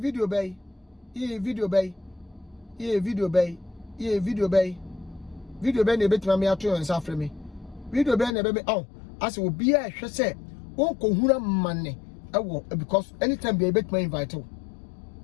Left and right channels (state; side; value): drops out; right; at 8.3 s